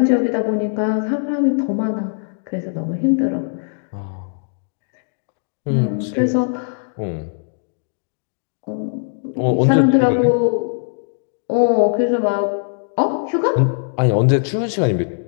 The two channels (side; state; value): right; silent; 66 dB below the other